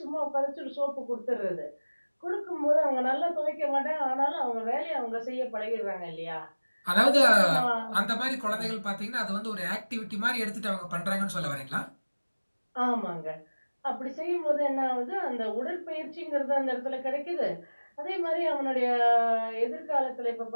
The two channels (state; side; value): inverted; both; correlation -1.00